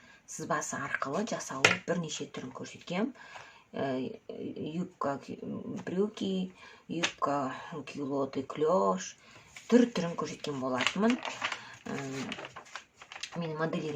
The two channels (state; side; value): identical; both; correlation 1.00